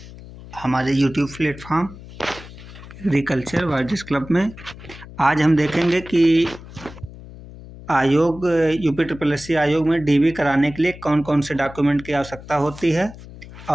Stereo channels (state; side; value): noise; left; hum, 16 dB below the sound